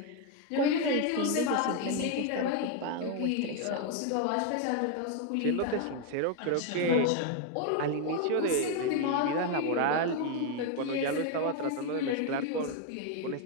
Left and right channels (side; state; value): both; different; correlation 0.01